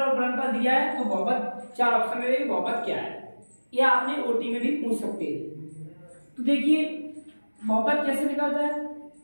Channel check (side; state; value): both; inverted; correlation -1.00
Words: गुणनफल दिया है तो बहुपद 4 ऑप्शन में बहुपद क्या है, या आपने ओटी में भी पूछ सकते हैं। तो देखिए बहुपद कैसे निकलता है।